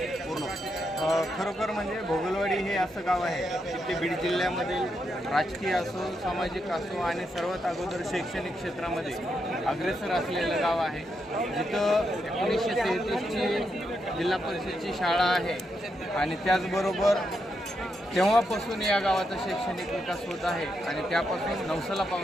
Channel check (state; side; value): normal; both; correlation 0.82